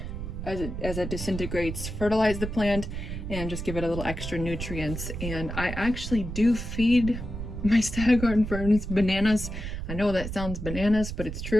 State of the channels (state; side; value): noise; right; rumble, 6 dB below the sound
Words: as it disintegrates, fertilize the plant and just give it a little extra nutrients. And I actually do feed my Staghorn ferns bananas. I know that sounds bananas, but it's